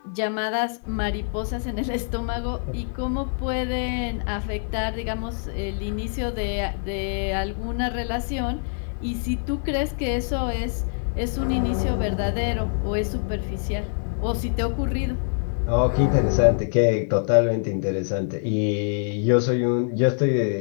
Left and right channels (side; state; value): right; silent; 62 dB below the other